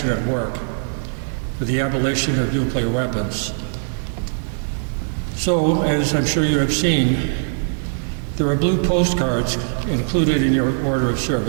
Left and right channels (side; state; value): left; silent; digital silence